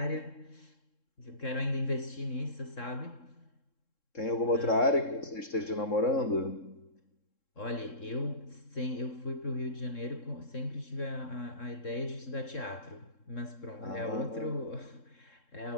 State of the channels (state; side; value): late; right; 3.7 ms